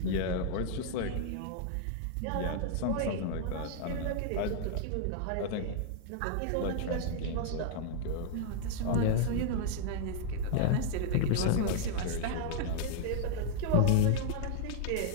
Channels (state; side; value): different; both; correlation -0.01